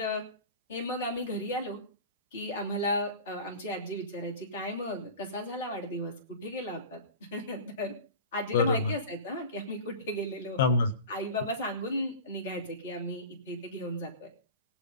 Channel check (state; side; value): inverted; both; correlation -0.33